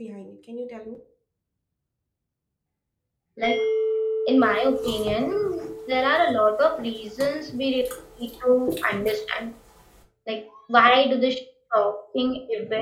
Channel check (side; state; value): both; identical; correlation 1.00